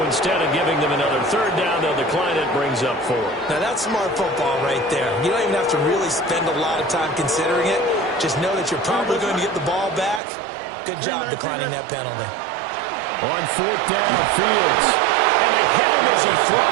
instead of giving them another 3rd down, they'll decline it, brings up 4. Now that's smart football right there. You don't even have to really spend a lot of time considering it. Just know that you're probably going to get the ball back. Good job declining that penalty. On 4th down, Fields. And they hit him as he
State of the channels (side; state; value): left; drops out; at 10.2 s